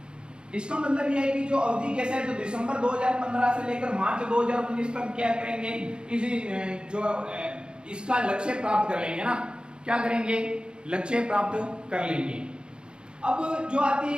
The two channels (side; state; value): left; late; 0.051 ms